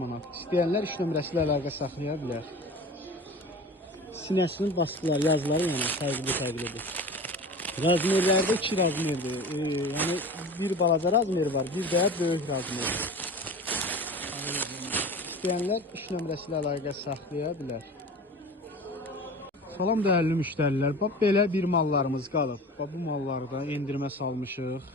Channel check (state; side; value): normal; both; correlation 0.36